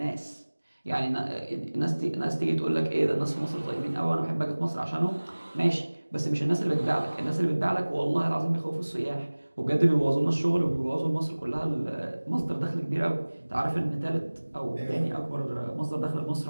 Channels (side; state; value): both; inverted; correlation -1.00